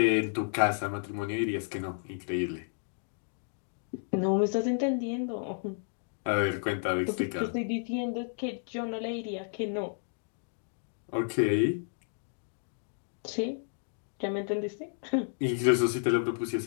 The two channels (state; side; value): silent; right; digital silence